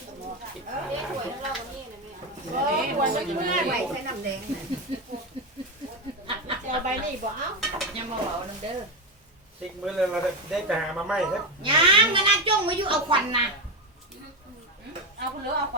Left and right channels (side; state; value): both; normal; correlation 0.12